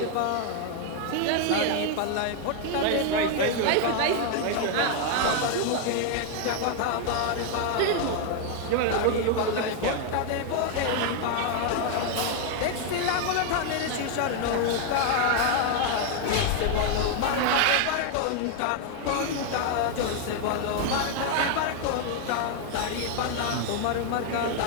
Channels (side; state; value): both; different; correlation 0.00